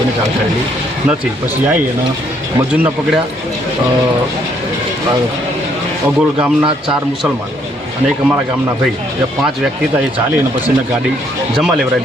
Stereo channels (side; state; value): both; normal; correlation 0.68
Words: જાણ કરેલી નથી. પછી આવી અને મજૂરને પકડ્યા. અગોલ ગામના 4 મુસલમાન અને એક અમારા ગામના ભાઈ, એ 5 વ્યક્તિ હતા. એ ચાલી અને પછી એને ગાડી જમા